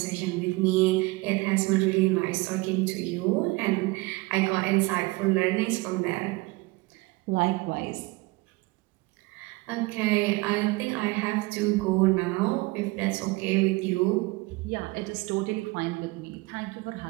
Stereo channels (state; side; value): quieter; left; 23.1 dB